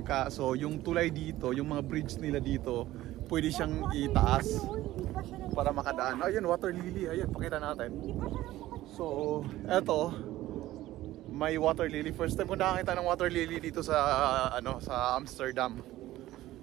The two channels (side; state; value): left; quieter; 15.6 dB